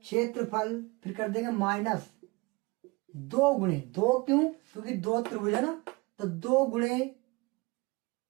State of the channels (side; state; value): left; quieter; 25.1 dB